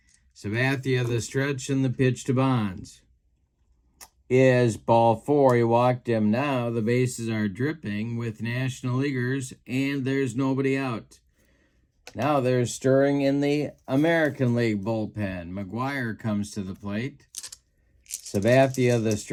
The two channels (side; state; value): both; identical; correlation 1.00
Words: Sabathia the stretch, and the pitch to Bonds is ball 4. He walked him. Now the bases are dripping with National Leaguers, and there's nobody out. Now there's stirring in the American League bullpen. McGuire comes to the plate. Sabathia the